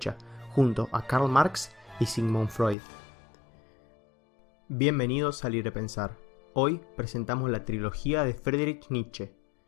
junto a Karl Marx y Sigmund Freud. Bienvenidos a Libre Pensar. Hoy presentamos la trilogía de Friedrich Nietzsche,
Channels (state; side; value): drops out; right; at 2.8 s